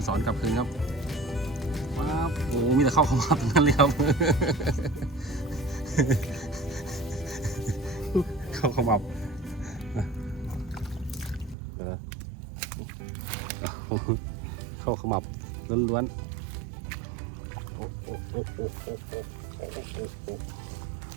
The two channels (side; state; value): left; drops out; at 11.6 s